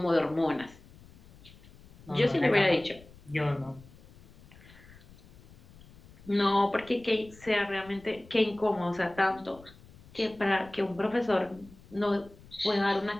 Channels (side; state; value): left; noise; rumble, 23 dB below the sound